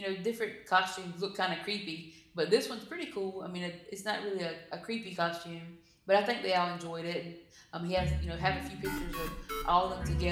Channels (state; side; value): identical; both; correlation 1.00